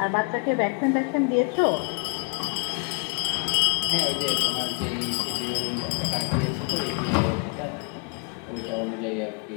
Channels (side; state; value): right; quieter; 35.2 dB